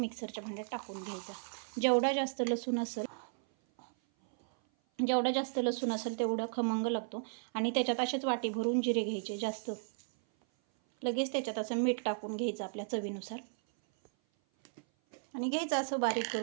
भांड्यात टाकून घ्यायचा. जेवढा जास्त लसूण असेल तेवढा खमंग लागतो. आणि त्याच्यात असेच वाटी भरून जिरे घ्यायचे जास्त. लगेच त्याच्यात असं मीठ टाकून घ्यायचं आपल्या चवीनुसार आणि घ्यायचं असं बारीक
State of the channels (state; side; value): silent; left; 55 dB below the other